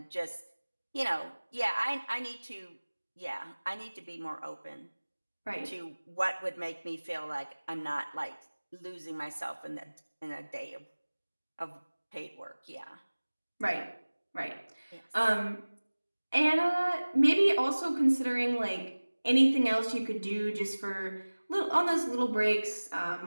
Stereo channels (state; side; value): inverted; both; correlation -1.00